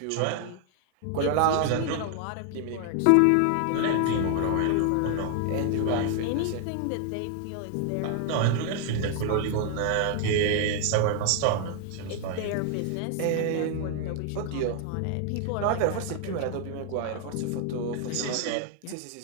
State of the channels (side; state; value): both; different; correlation 0.00